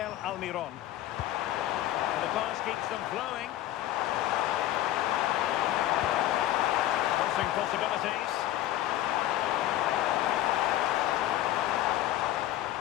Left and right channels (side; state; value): right; quieter; 13.7 dB